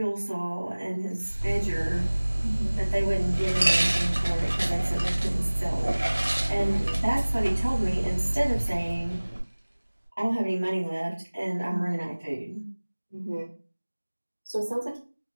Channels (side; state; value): both; inverted; correlation -1.00